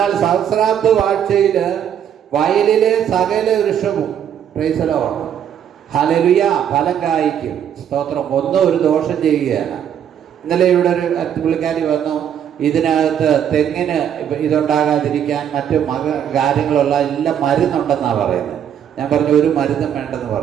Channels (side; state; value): left; quieter; 9.2 dB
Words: സഹസ്രാബ്ദ വാഴ്ചയിൽ വയലിലെ സകല വൃക്ഷവും ഹല്ലേലൂയ ഫലം കായ്ക്കും. സ്തോത്രം. ഒന്നും ഒരു ദോഷം ചെയ്യുകയാണ്. ഇന്നലെ ഇവിടെ ഒരു പുള്ളിക്കാരി വന്നു, ഇതിനകത്ത് തെങ്ങിന് ഇതുണ്ടാകാതിരിക്കാൻ മറ്റു കാര്യങ്ങളുള്ള എല്ലാം മരുന്നുണ്ടെന്നാണ് പറയുന്നത്. ഞാൻ പറഞ്ഞു ഒരു മരുന്നും വേണ്ടെന്ന്